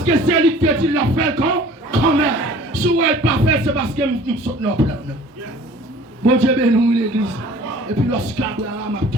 que c'est lui qui dit l'a fait quand même. Si vous n'avez pas fait, c'est parce que nous sommes dans le plan. Mon Dieu béni, l'église. Et puis lorsqu'Abraham a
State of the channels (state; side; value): normal; both; correlation 0.48